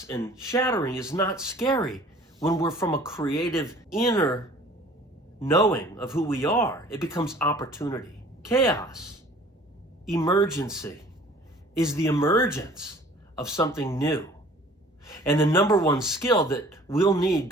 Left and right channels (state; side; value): normal; both; correlation 0.50